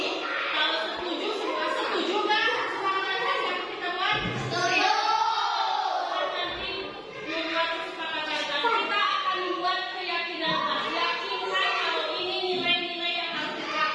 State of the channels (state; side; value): identical; both; correlation 1.00